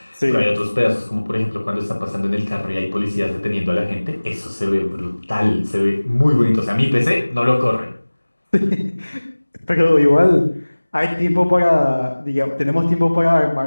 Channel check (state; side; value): inverted; both; correlation -1.00